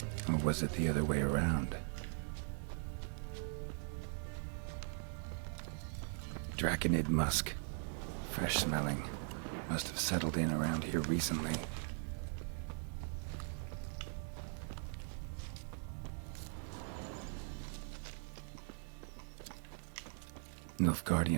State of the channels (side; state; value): left; silent; 51 dB below the other